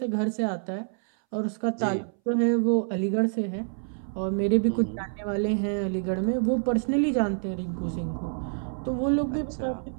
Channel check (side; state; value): left; silent; 60 dB below the other